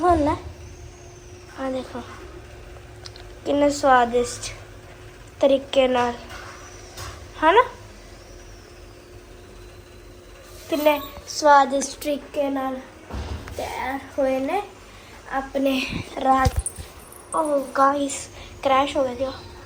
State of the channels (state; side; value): identical; both; correlation 1.00